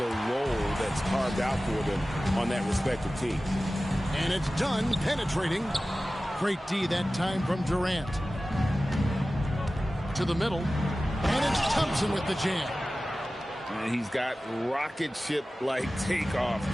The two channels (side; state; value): both; normal; correlation 0.96